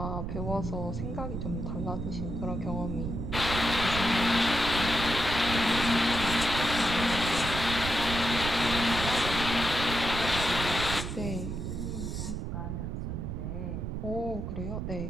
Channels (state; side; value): noise; right; rumble, 4 dB below the sound